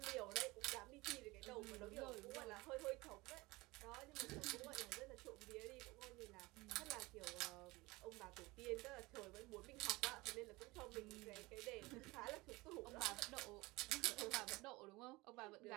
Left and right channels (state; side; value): quieter; left; 22.1 dB